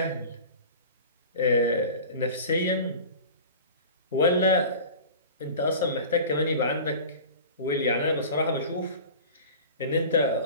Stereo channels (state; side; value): inverted; both; correlation -0.37